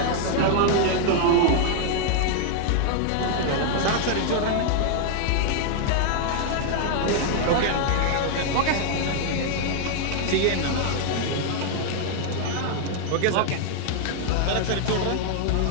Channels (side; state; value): both; different; correlation 0.00